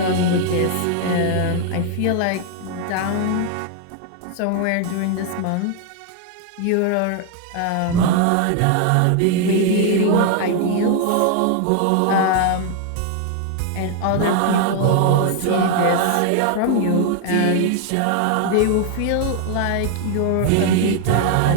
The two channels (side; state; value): both; different; correlation 0.00